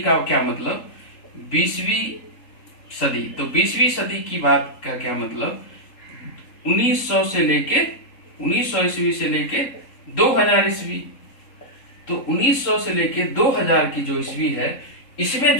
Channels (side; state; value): right; late; 3.8 ms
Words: क्या मतलब? 20वीं सदी, तो 20वीं सदी की बात का क्या मतलब? 1900 ईस्वी से लेके 2000 ईस्वी। तो 1900 से लेके 2000 की जो ईस्वी है, इसमें